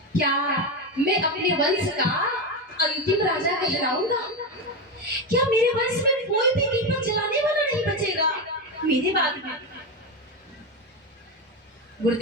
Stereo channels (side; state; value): both; normal; correlation 0.14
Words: क्या मैं अपने वंश का अंतिम राजा कहलाऊंगा? क्या मेरे वंश में कोई भी दीपक जलाने वाला नहीं बचेगा मेरे बाद में?